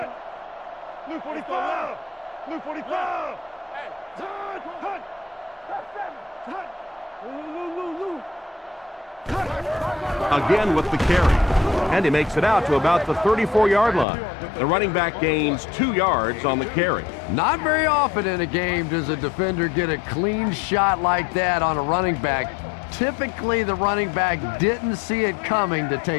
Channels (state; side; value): drops out; right; at 14.1 s